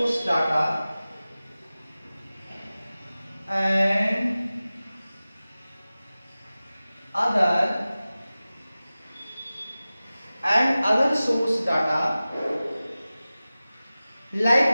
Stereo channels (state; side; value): inverted; both; correlation -0.97